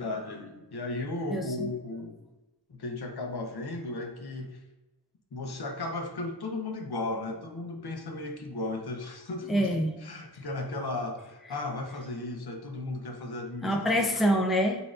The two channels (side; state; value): both; normal; correlation 0.42